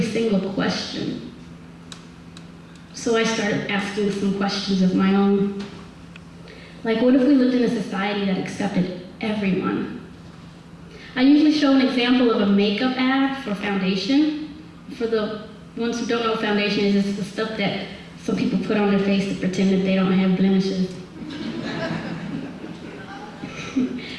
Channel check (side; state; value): both; identical; correlation 1.00